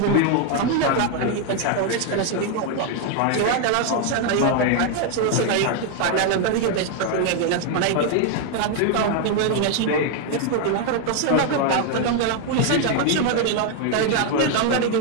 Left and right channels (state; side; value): different; both; correlation 0.01